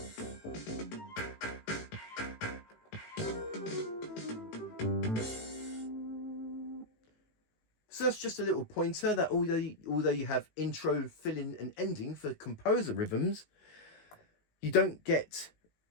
So that's just a little pointer that although you have intro, fill-in and ending for composer rhythms, you don't get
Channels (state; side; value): late; right; 18 ms